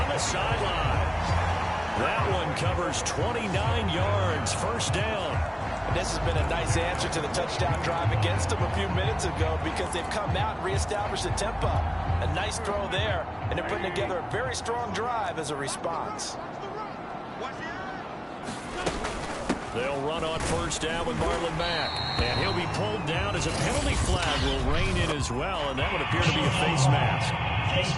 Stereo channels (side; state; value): both; identical; correlation 1.00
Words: the sideline. That one covers 29 yards. First down. And this has been a nice answer to the touchdown drive against them a few minutes ago because they've come out and reestablished the tempo. A nice throw there, and they're putting together a very strong drive as a response. They'll run on first down with Marlon Mack. And he'll be pulled down as a penalty flag will rein in as well, and that would appear to be a face mask. Face